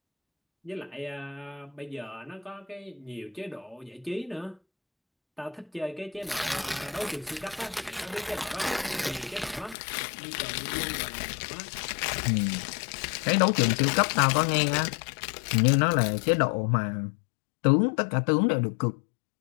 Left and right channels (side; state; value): right; drops out; at 9.8 s